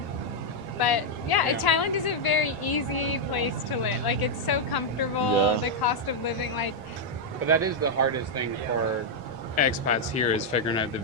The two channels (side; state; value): left; late; 1.5 ms